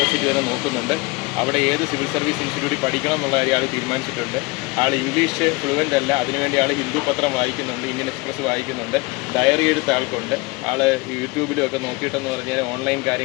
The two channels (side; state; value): right; quieter; 25.1 dB